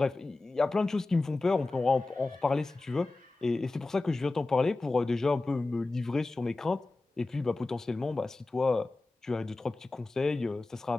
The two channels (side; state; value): right; quieter; 3.2 dB